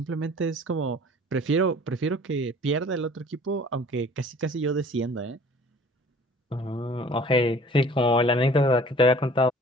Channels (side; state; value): both; normal; correlation 0.49